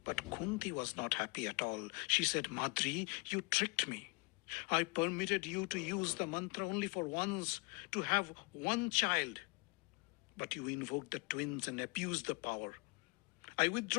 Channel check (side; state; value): right; quieter; 28.3 dB